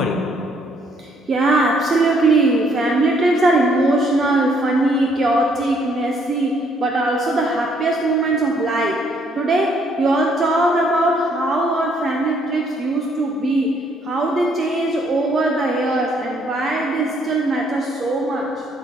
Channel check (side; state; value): both; normal; correlation 0.67